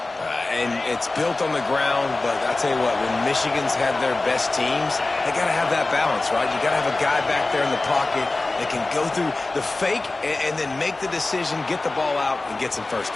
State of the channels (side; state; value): right; quieter; 3.2 dB